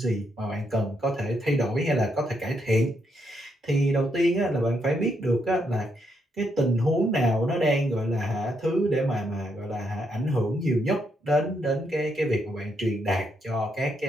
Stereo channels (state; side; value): normal; both; correlation 0.77